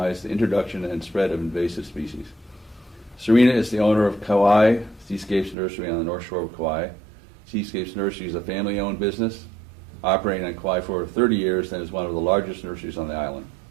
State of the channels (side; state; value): left; drops out; at 5.6 s